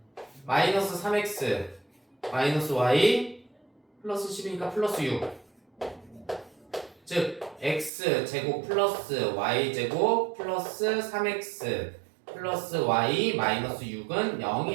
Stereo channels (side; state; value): left; drops out; at 7.9 s